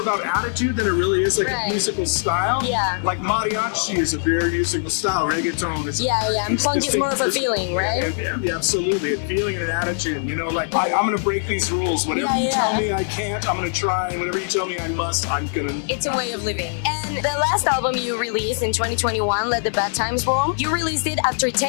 about attitude than it really is like a musical style. Yeah. Like mariachi is a very musical style. Reggaeton is. And punk is more of a feeling, right? Yeah, absolutely. A feeling and an attitude. I'm going to break these rules. Whatever you tell me I can't, I'm going to try. And whatever you tell me I must, I'm going to. It's a way of living. And the last album you released in 2021, Let the Bad Times Roll, you released it after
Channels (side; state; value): right; silent; digital silence